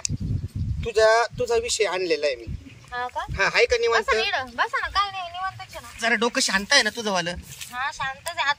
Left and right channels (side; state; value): both; identical; correlation 1.00